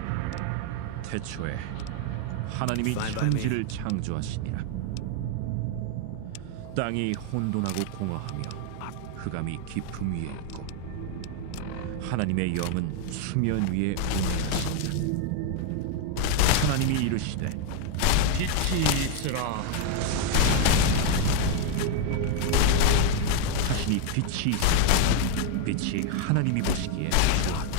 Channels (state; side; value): different; both; correlation 0.00